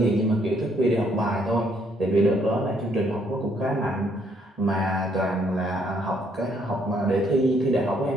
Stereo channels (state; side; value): normal; both; correlation 0.69